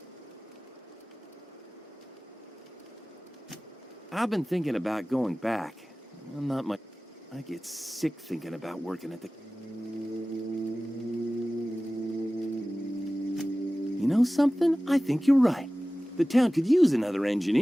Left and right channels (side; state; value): both; normal; correlation 0.97